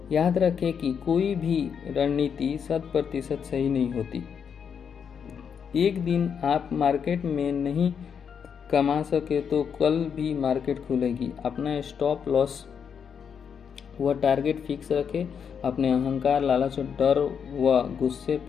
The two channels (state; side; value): quieter; right; 7.1 dB